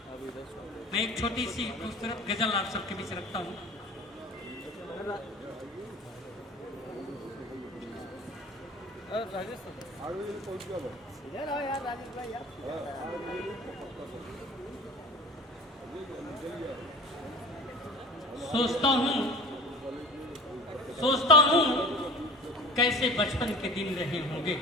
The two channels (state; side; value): normal; both; correlation 0.38